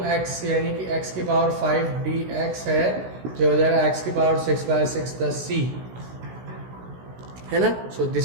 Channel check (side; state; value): left; late; 16 ms